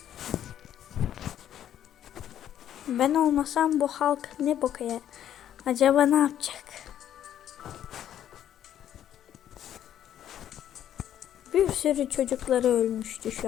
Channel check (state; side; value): quieter; right; 10.7 dB